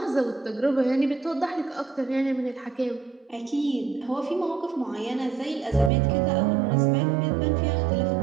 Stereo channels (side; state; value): left; drops out; at 5.9 s